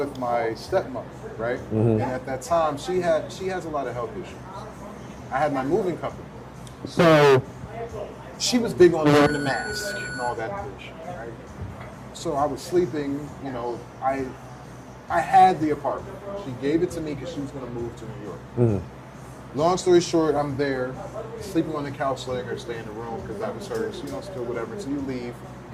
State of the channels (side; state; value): both; identical; correlation 1.00